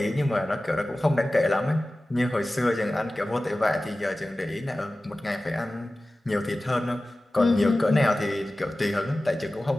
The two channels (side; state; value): both; normal; correlation 0.96